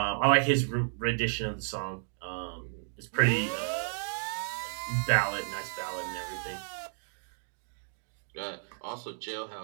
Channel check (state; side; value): silent; left; digital silence